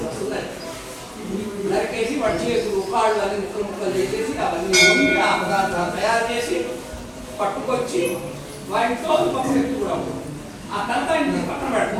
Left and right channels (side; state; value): both; identical; correlation 1.00